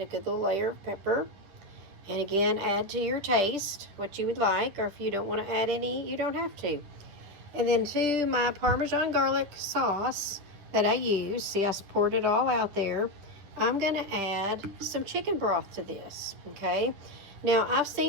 good little layer of pepper. And again, add to your taste what you would like, or if you don't want to add any, you don't have to. And then to my Parmesan garlic sauce that I use, see I poured it all out there, I'm going to add some chicken broth to this, okay? Now, I've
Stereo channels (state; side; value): late; left; 10 ms